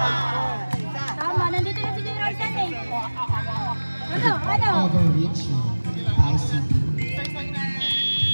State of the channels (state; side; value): inverted; both; correlation -1.00